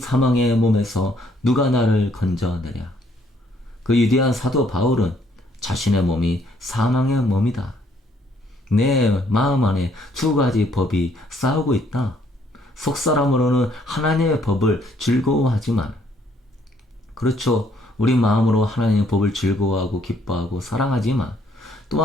몸에서 누가 나를 건져내랴. 그 위대한 사도 바울은 자신의 몸이 사망의 몸이다, 내 마음 안에 두 가지 법이 싸우고 있다. 속사람으로는 하나님의 법을 즐거워하지만, 그렇죠, 우리 마음으로 하나님의 법을 즐거워하고 기뻐하고 사랑하지만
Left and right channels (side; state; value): both; normal; correlation 0.67